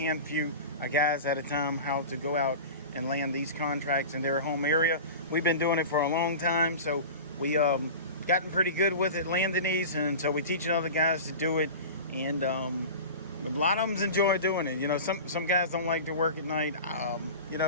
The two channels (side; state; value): both; inverted; correlation -0.33